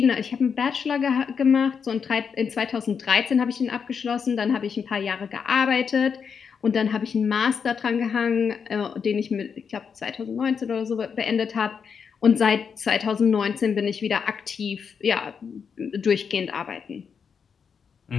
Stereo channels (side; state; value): right; quieter; 6.4 dB